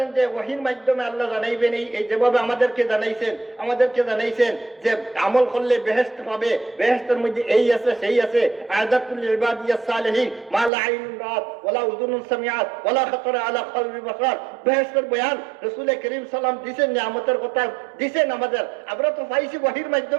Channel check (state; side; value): drops out; left; at 10.7 s